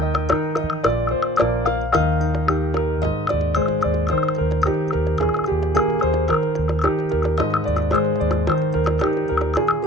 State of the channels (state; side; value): normal; both; correlation 0.53